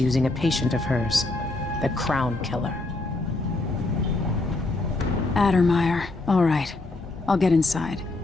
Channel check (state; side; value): quieter; right; 3.0 dB